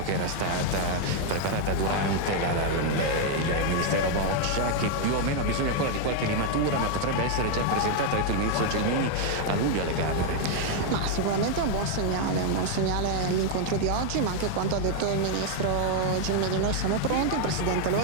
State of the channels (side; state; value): both; different; correlation 0.00